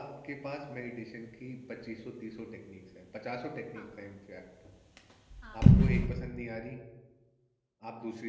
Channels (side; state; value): both; identical; correlation 1.00